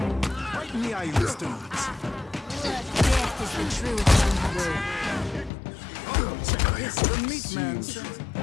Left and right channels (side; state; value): right; drops out; at 5.5 s